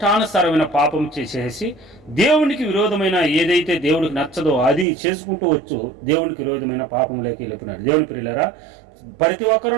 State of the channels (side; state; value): left; drops out; at 4.9 s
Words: పాపం చేసేసి దేవునికి విరోధమైన ఏదైతే దేవుడికి నచ్చదో అది చేసుకుంటూ వచ్చు దేవునికి విరోధమైన పాపంలోకి వెళ్ళిపోయినాడు. దేవుని ప్రియులారా, ప్రతి